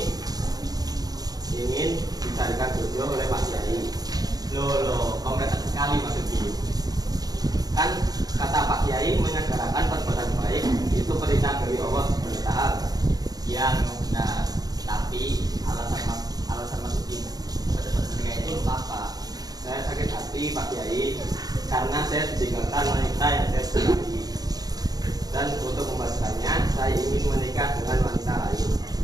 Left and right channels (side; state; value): left; late; 0.19 ms